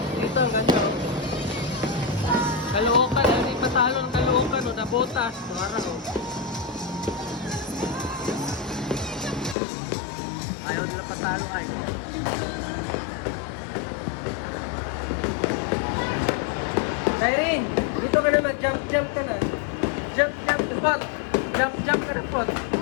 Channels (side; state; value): right; drops out; at 9.6 s